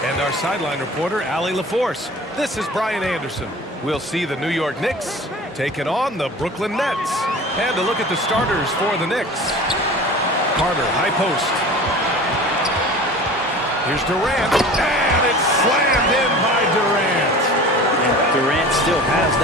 and our sideline reporter, Allie LaForce, this is Brian Anderson. We'll see the New York Knicks taking on the Brooklyn Nets. And a look at the starters for the Knicks. Carter, high post. Here's Durant, and it's slammed in by Durant. And Durant still has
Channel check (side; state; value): both; normal; correlation 0.39